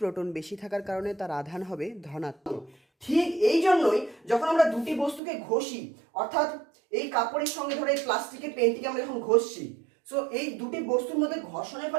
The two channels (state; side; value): drops out; left; at 5.2 s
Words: বেশি থাকার কারণে তার আধান হবে ধনাত্মক। ঠিক এই জন্যই যখন আমরা দুটি বস্তুকে ঘষি, অর্থাৎ এই কাপড়ের সঙ্গে ধরে এই প্লাস্টিকের পেনটিকে আমরা যখন ঘষছি, সো এই দুটি বস্তুর মধ্যে ঘর্ষণের